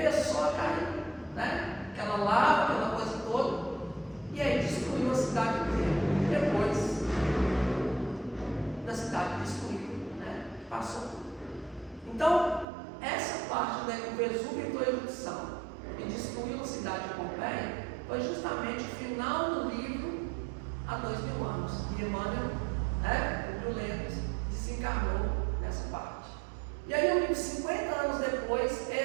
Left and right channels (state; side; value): drops out; left; at 12.7 s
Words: a cair, né? Aquela lava, aquela coisa toda, e aí destruiu a cidade inteira. Depois da cidade destruída, né? Passou. Então, essa parte da que o Vesúvio entrou em erupção e destruiu a cidade de Pompeia foi justamente o final do livro há 2000 anos. E Emmanuel, né, Publio Lentulus, desencarnou nessa parte. E aí o livro 50 anos depois